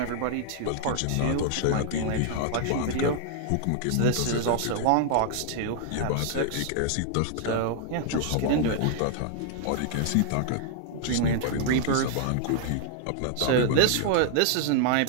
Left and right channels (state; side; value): different; both; correlation 0.00